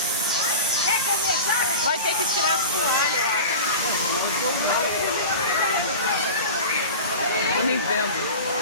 Vai ter que tirar as toalhas, eu acho. Eu nem vendo.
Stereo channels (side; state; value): both; inverted; correlation -0.32